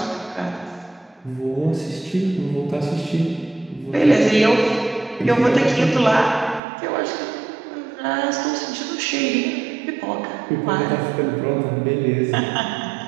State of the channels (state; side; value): drops out; left; at 6.6 s